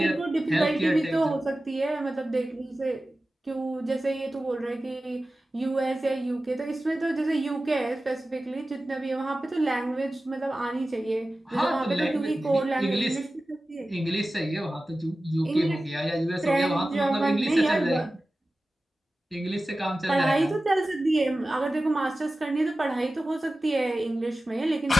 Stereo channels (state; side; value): normal; both; correlation 0.95